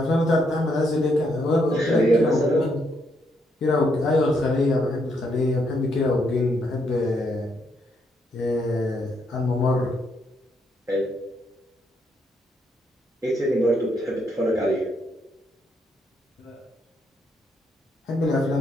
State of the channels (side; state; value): both; normal; correlation 0.75